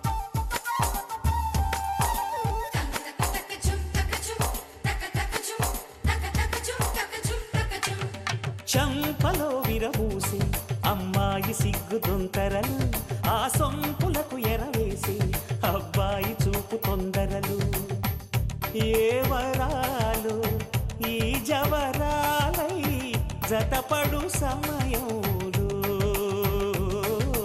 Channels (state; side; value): identical; both; correlation 1.00